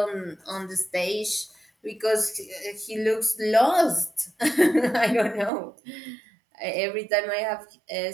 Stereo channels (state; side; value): drops out; left; at 5.5 s